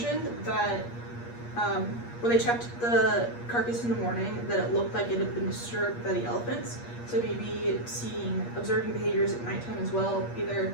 that when they checked the carcass in the morning, that it looked like it had been disturbed by the elephants. So maybe observing behaviors at nighttime as well. Either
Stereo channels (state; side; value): late; right; 8.5 ms